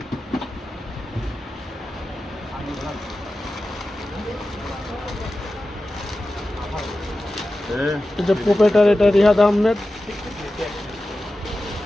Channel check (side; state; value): both; normal; correlation 0.94